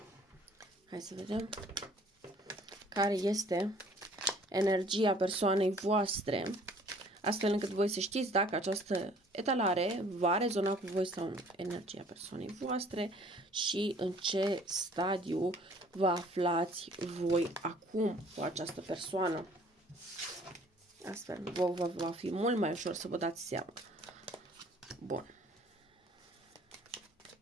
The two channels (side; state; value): both; normal; correlation 0.55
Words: Hai să vedem care este energia persoanei voastre, astfel încât voi să știți dacă această etalare va rezona cu voi sau nu. Energia persoanei voastre și în ce stadiu vă aflați voi acum cu această persoană. Astfel, va fi mult mai ușor să vă dați seama. Bun.